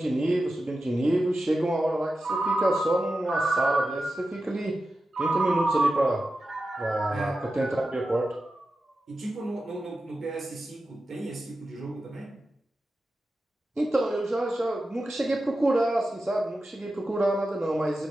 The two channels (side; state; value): both; normal; correlation 0.92